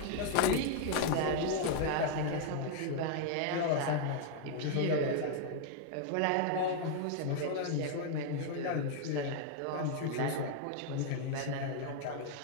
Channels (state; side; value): different; both; correlation 0.00